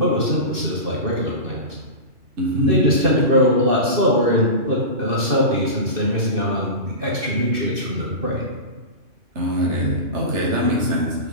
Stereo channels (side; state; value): left; late; 2.6 ms